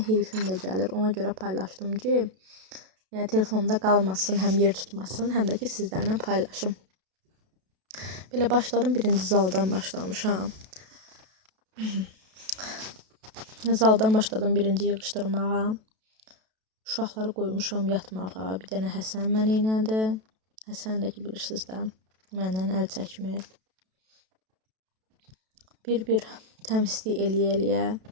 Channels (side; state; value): left; late; 32 ms